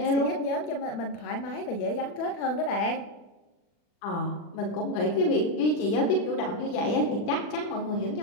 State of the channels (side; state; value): right; late; 40 ms